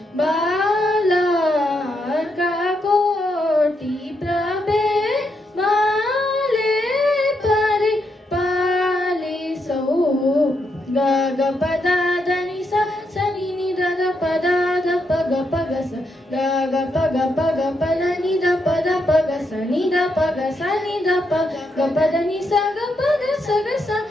बाला का कोटि प्रवे बाले परि पालिसो ग ग पद దని స సని ని ద ద పద ద ప గ ప గ స ग ग प ग प ग ప ద ని ద ప ద ప గ స ని ద ప గ స ని ద ప గ ప ద ని స గ ప గ స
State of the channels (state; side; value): normal; both; correlation 0.80